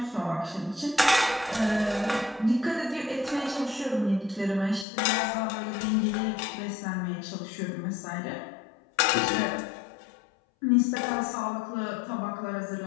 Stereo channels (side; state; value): right; drops out; at 4.9 s